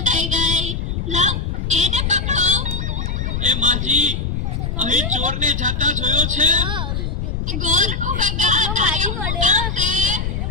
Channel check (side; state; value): left; noise; rumble, 2 dB below the sound